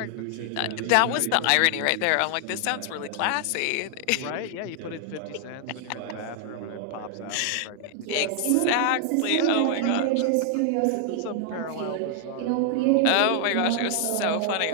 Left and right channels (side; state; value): both; different; correlation 0.00